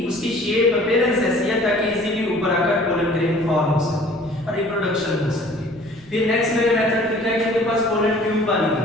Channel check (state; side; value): noise; left; rumble, 25 dB below the sound